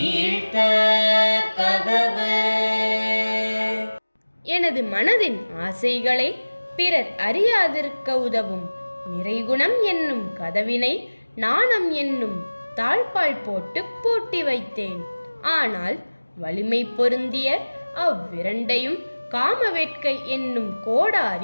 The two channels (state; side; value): inverted; both; correlation -1.00